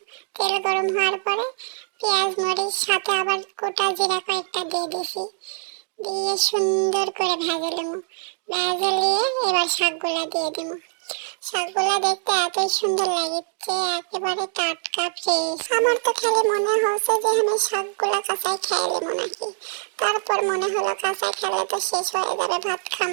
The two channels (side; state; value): left; silent; 60 dB below the other